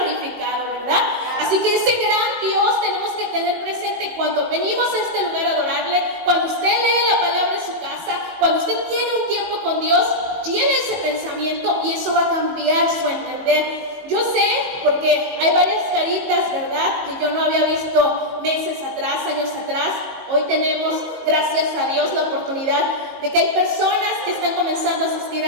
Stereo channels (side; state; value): left; late; 19 ms